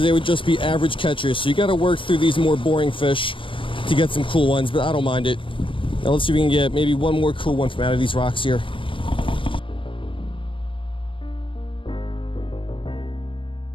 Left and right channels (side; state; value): right; late; 0.25 ms